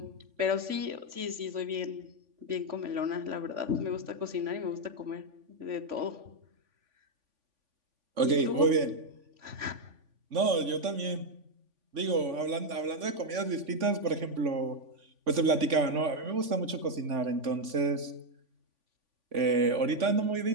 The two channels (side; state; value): left; late; 3.5 ms